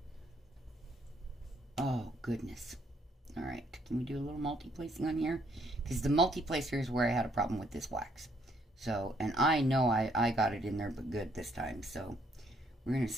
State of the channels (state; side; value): normal; both; correlation 0.68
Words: Oh, goodness. Alright, can we do a little multi-placing on here? Because the multi-placer is where I had a problem with this wax. So, and I know I got it in there but good this time. So, we're going to